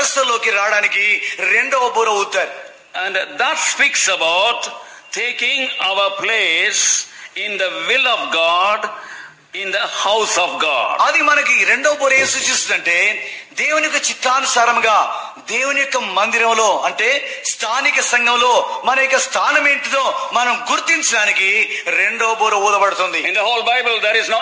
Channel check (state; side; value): identical; both; correlation 1.00